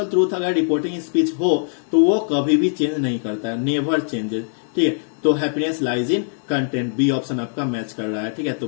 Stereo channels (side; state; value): right; silent; digital silence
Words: ट्रूथ अगर रिपोर्टिंग स्पीच हो तो वो कभी भी चेंज नहीं करता है, नेवर चेंजेस, ठीक है। तो happiness lies in content, B option आपका मैच कर रहा है, ठीक है। तो